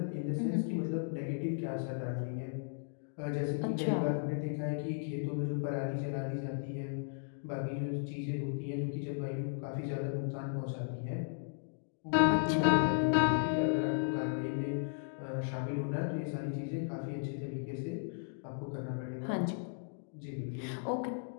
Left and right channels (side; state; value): right; silent; digital silence